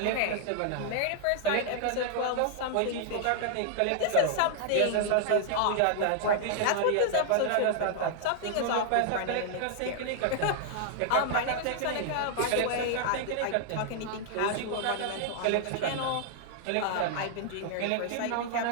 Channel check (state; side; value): different; both; correlation 0.00